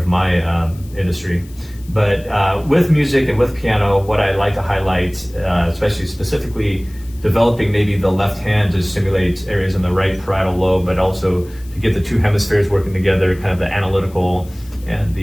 my industry. But with music and with piano, what I like to highlight, especially specifically developing maybe the left hand to stimulate areas in the right parietal lobe, but also to get the two hemispheres working together, kind of the analytical and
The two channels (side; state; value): left; noise; hiss, 25 dB below the sound